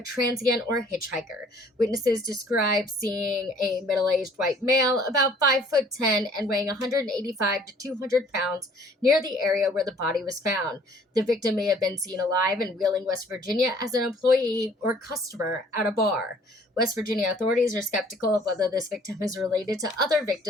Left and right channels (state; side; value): normal; both; correlation 0.56